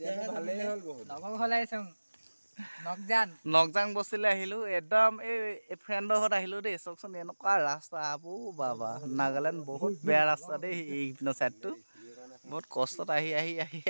নকজাং বস্তিলৈ আহিলো একদম এই ফ্ৰেণ্ডৰ ঘৰত আহিলো দেই চাওকচোন এনেকুৱা ৰাস্তা আবু বাবা নাগালেণ্ড বহুত বেয়া ৰাস্তা দেই এইপিনৰ চাইডটো বহুত কষ্টত আহি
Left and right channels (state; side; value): inverted; both; correlation -1.00